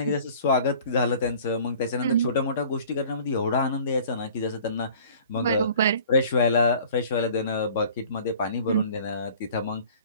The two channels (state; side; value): inverted; both; correlation -0.49